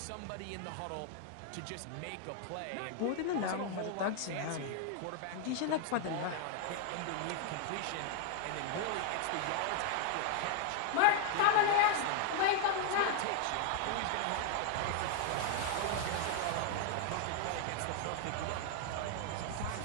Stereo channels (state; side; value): different; both; correlation 0.00